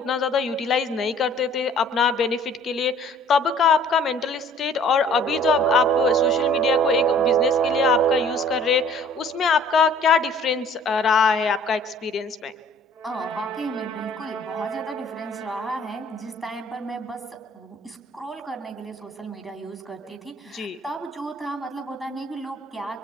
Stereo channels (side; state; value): both; normal; correlation 0.53